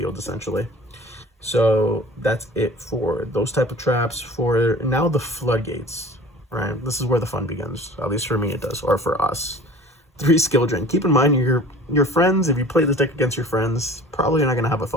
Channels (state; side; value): normal; both; correlation 0.44